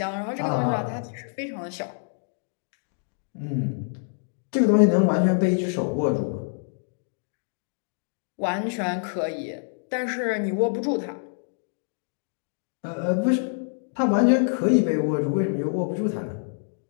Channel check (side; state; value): right; silent; digital silence